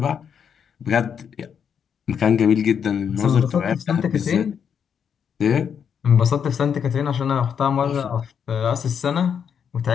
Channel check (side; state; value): right; quieter; 7.5 dB